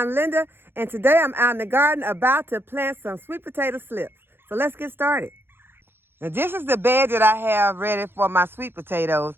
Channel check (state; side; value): late; left; 0.10 ms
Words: Linda, and today I'm out in the garden about to plant some sweet potato slips. So let's get started. Now this is the bed that I have ready for my sweet potatoes,